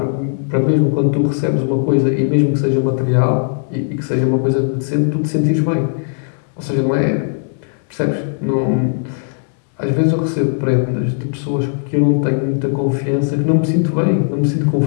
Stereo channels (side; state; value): right; silent; digital silence